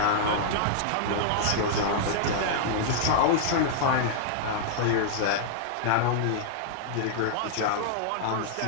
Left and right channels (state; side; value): different; both; correlation -0.01